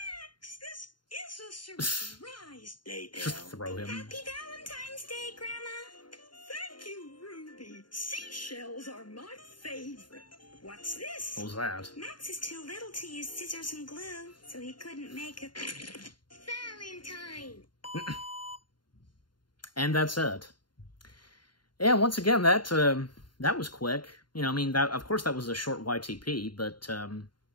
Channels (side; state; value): right; late; 0.71 ms